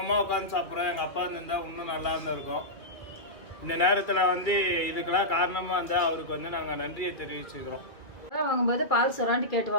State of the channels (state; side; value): late; right; 2.5 ms